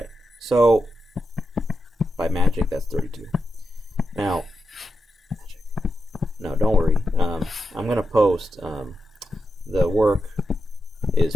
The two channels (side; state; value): both; normal; correlation 0.87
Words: so by magic, that's 32. Now, no, don't worry. I'm going to post, the work is